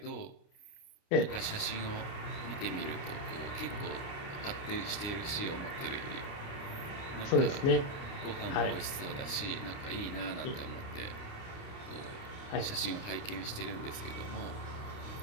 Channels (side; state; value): right; late; 29 ms